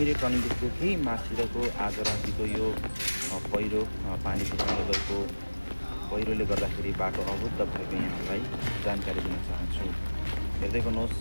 टर्निङदेखिको केही माथितिरको आज रातिको यो पहिरो पानीको कारणले गएको पहिरोले गर्दाखेरि बाटो अवरुद्ध भएको यहाँहरूलाई जानकारी दिन चाहन्छु। हेर्दै गर्नुहोस्,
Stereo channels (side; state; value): both; inverted; correlation -1.00